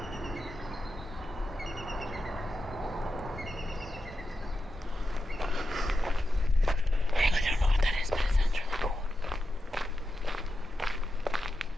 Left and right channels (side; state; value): both; normal; correlation 0.89